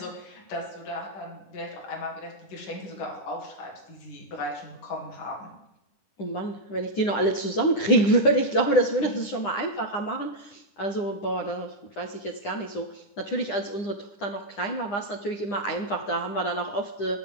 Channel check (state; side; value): late; right; 9.9 ms